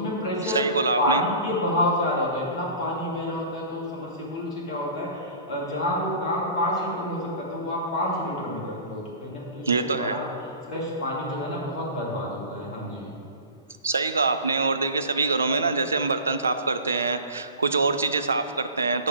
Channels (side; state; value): both; inverted; correlation -0.39